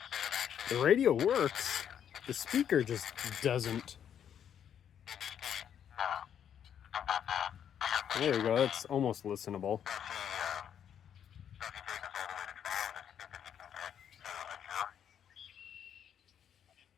The radio works. The speaker just doesn't. There we go. That's almost listenable.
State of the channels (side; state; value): right; quieter; 9.0 dB